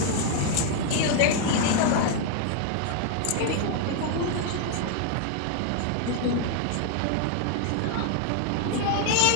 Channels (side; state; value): both; different; correlation 0.00